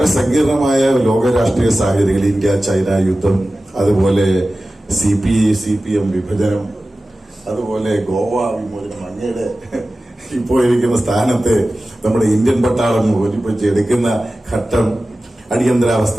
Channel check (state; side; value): normal; both; correlation 0.95